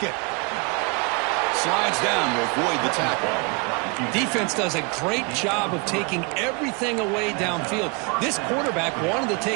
Slides down to avoid the tackle. Defense does a great job of taking everything away downfield. This quarterback wanted to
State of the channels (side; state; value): left; quieter; 32.0 dB